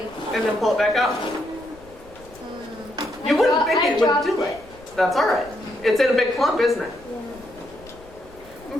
and then pull it back out. You wouldn't think it would do it. That's all right. It's in a big clump, isn't it? And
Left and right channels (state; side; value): noise; left; rumble, 23 dB below the sound